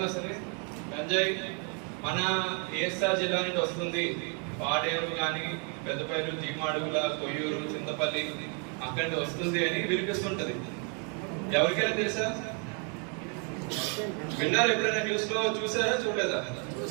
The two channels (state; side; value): quieter; left; 38.1 dB